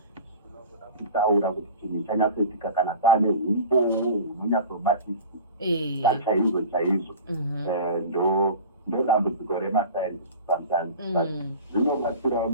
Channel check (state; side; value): inverted; both; correlation -0.36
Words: kutaura kuti chinhu chanyatsoitika kana paane humbo hunonyatsobatisa chaizvo ndo dambudziko remasainzi sometimes, but zvinobatsirawo